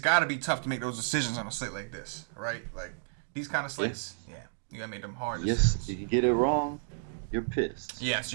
got to be tough to make those decisions on a slate like this, right? Like, these kind of slates, yeah. You gotta make them hard Yes, decisions. if you get it wrong, you're pissed. Yes,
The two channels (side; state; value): left; silent; 57 dB below the other